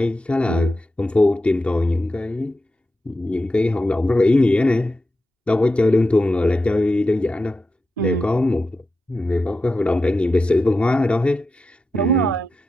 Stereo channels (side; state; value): both; normal; correlation 0.90